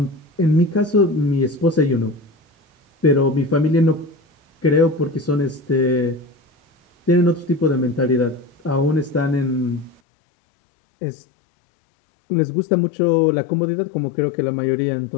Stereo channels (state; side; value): drops out; right; at 10.0 s